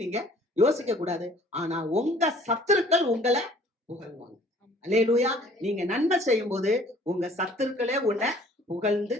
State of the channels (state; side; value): normal; both; correlation 0.54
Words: நீங்க யோசிக்க கூடாது. ஆனா உங்க சத்துருக்கள் உங்களை புகழ்வாங்க. அல்லேலூயா. நீங்க நன்மை செய்யும் போது உங்க சத்துருக்களே உன்னை புகழ்ந்து